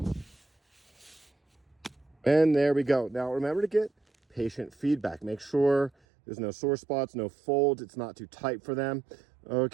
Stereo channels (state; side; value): drops out; left; at 5.9 s